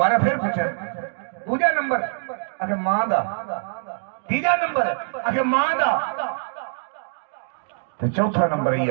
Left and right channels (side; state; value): left; silent; digital silence